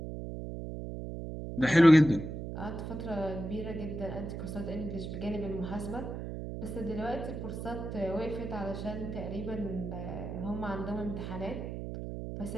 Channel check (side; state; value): right; noise; hum, 6 dB below the sound